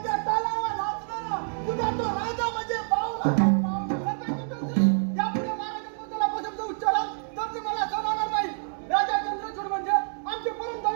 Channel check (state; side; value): silent; left; digital silence